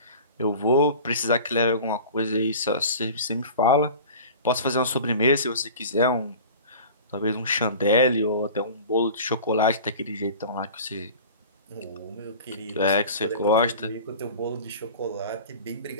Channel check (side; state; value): both; inverted; correlation -0.39